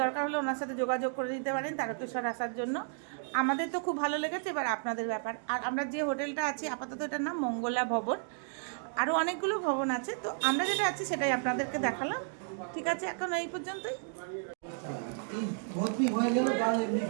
দরকার হলে ওনার সাথে যোগাযোগ করে দিতে পারেন তারকেশ্বর আসার জন্য। আমাদের তো খুব ভালো লেগেছে, এবার আপনাদের ব্যাপার। আর আমরা যে হোটেলটা আছি আপাতত এটার নাম মঙ্গলা ভবন, আরও অনেকগুলো ভবন আছে, তো আমরা যেটা আছি সেটাই আপনাদেরকে দেখালাম। ঠিক আছে, এখন এই পর্যন্তই।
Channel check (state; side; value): silent; left; 56 dB below the other